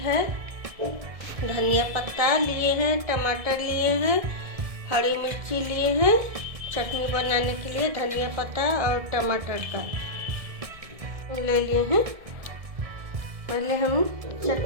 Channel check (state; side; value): late; left; 1.6 ms